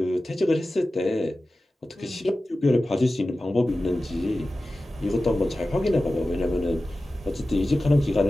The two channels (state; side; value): normal; both; correlation 0.95